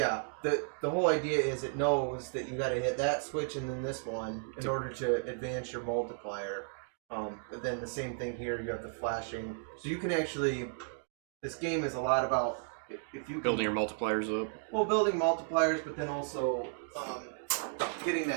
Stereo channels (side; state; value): left; silent; digital silence